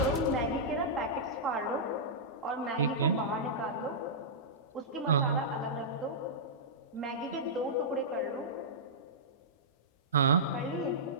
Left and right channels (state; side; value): normal; both; correlation -0.15